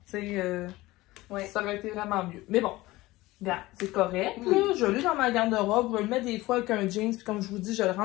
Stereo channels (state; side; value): quieter; right; 19.0 dB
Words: Tu sais, ça aurait été vraiment mieux. Mais bon, regarde, c'est correct, là. Je l'ai dans ma garde-robe. Je le mets des fois avec un jeans, puis comme je vous dis, je le